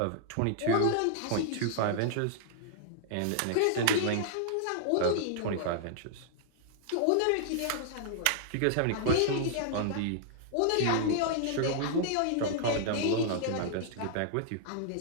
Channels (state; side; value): different; both; correlation -0.01